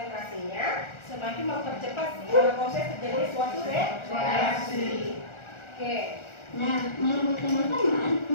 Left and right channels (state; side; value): late; right; 1.4 ms